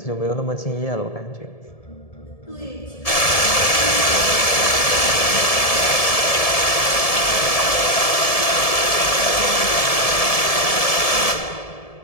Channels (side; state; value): right; late; 1.7 ms